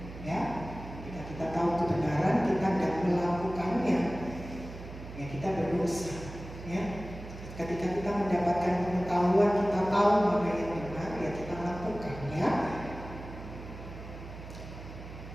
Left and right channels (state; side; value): noise; right; hum, 12 dB below the sound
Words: ya. Kita tahu kebenaran, kita tidak melakukannya, ya kita berdosa, ya. Ketika kita mendapatkan pengetahuan, kita tahu mana yang benar, ya kita lakukan, ya.